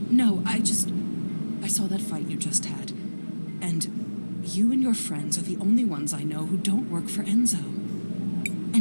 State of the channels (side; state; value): both; inverted; correlation -1.00